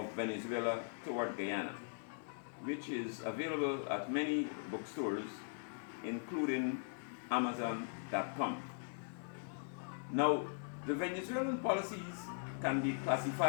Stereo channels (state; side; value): silent; right; digital silence